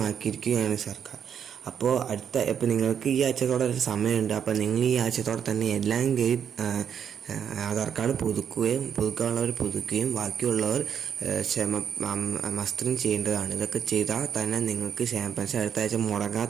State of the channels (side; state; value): left; quieter; 8.1 dB